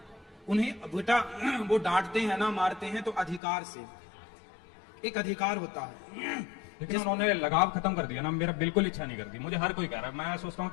उन्हें बेटा वो डांटते हैं ना, मारते हैं तो अधिकार से, एक अधिकार होता है। लेकिन उन्होंने लगाव खत्म कर दिया ना। मेरा बिल्कुल इच्छा नहीं करती। मुझे हर कोई कह रहा है, मैं सोचता हूँ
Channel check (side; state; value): right; drops out; at 3.4 s